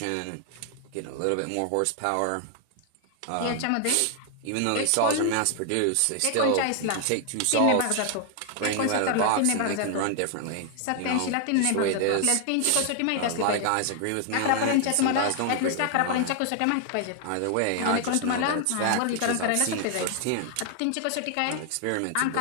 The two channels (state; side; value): different; both; correlation 0.00